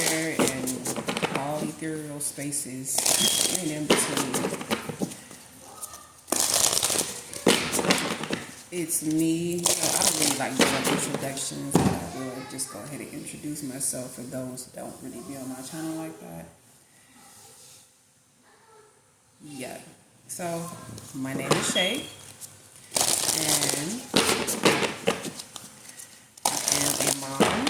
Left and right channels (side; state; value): both; identical; correlation 1.00